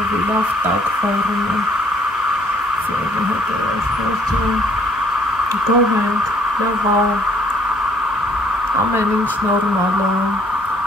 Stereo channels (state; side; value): normal; both; correlation 0.62